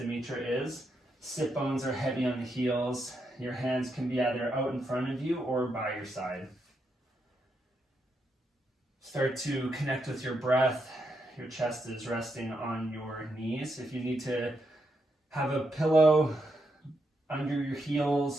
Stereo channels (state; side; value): normal; both; correlation 0.81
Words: is. Sit bones are heavy on the heels. Your hands can be either out in front of you or by your side. Start to connect with your breath. Your chest is resting on your knees. If you need to have a pillow under your